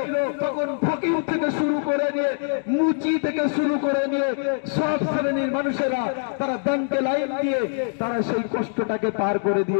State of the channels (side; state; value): right; silent; digital silence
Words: তখন ফকির থেকে শুরু করে নিয়ে নিয়ে মুচি থেকে শুরু করে নিয়ে সব শ্রেণীর মানুষেরা তারা ব্যাংকে লাইন দিয়ে তারা সেই কষ্টটাকে পার করে